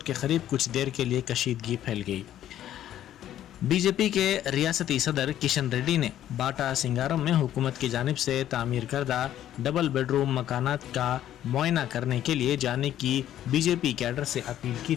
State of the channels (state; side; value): quieter; right; 11.8 dB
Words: के करीब कुछ देर के लिए कशीदगी फैल गई। बीजेपी के रियासती सदर किशन रेड्डी ने बाटा सिंगारम में हुकूमत की जानिब से तामीर करदा डबल बेडरूम मकानात का मुआयना करने के लिए जाने की बीजेपी कैडर से अपील की